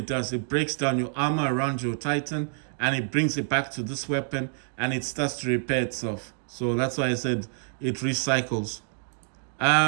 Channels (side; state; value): left; silent; 60 dB below the other